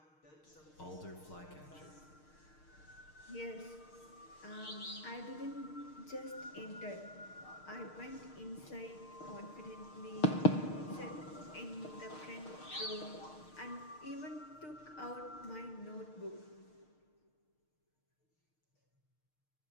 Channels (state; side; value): late; right; 6.5 ms